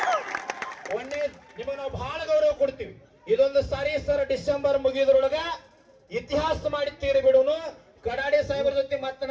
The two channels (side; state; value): both; identical; correlation 1.00